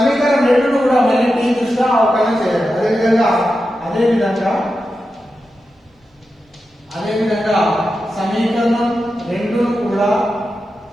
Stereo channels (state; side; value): normal; both; correlation 0.90